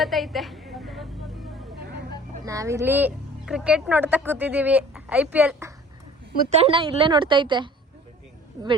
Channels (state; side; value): normal; both; correlation 0.48